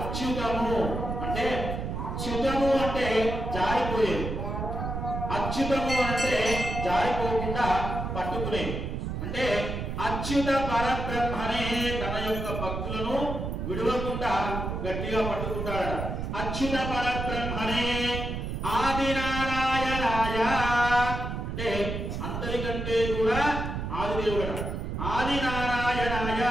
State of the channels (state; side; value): noise; right; rumble, 4 dB below the sound